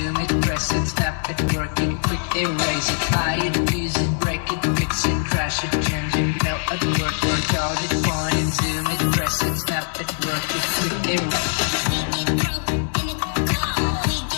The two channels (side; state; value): right; silent; digital silence